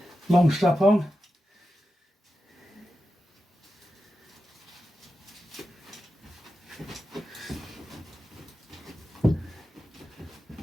Long strap on.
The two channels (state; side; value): normal; both; correlation 0.91